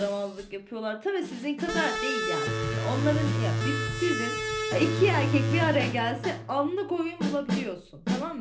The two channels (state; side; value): identical; both; correlation 1.00